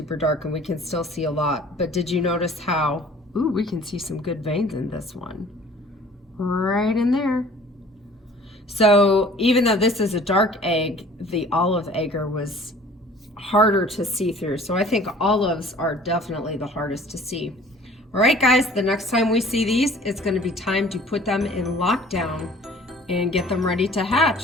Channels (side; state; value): both; normal; correlation 0.50